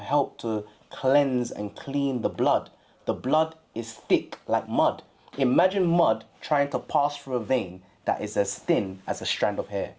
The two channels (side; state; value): both; identical; correlation 1.00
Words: to cleanse and clean the blood. The blood is thick like mud. Imagine mud trying to pass through a vein that is as thin as a strand of hair.